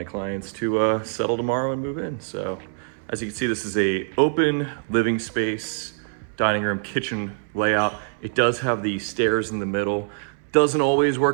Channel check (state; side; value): silent; left; 62 dB below the other